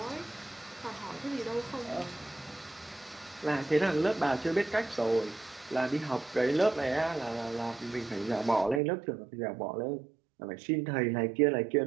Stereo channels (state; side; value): drops out; left; at 8.8 s